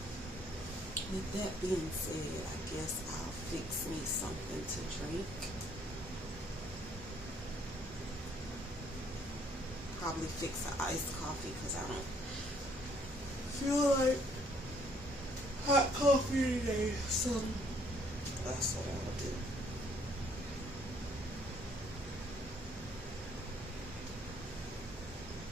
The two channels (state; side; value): normal; both; correlation 0.64